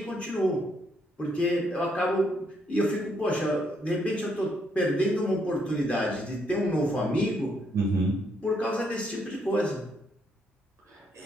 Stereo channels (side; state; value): both; normal; correlation 0.74